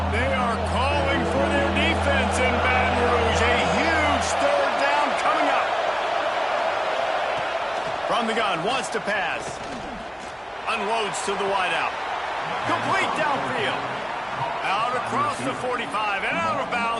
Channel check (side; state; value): both; identical; correlation 1.00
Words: They are calling for their defense in Baton Rouge. A huge third down coming up. From the gun, wants to pass. Unloads to the wideout. Complete downfield. Out across the 45 and out of